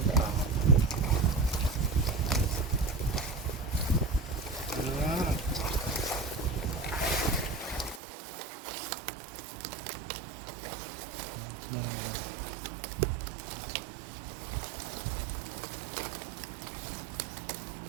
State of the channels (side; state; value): left; drops out; at 8.0 s